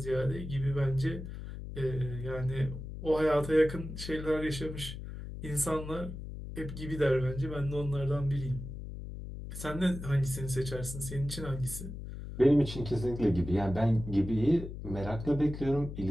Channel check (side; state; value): left; noise; hum, 9 dB below the sound